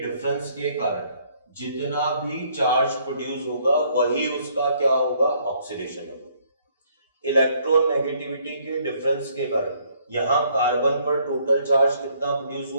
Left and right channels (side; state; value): both; inverted; correlation -0.66